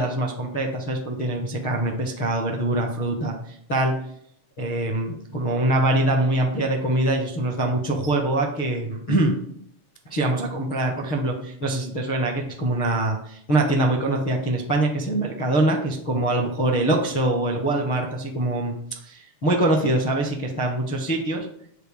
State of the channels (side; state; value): right; late; 6.7 ms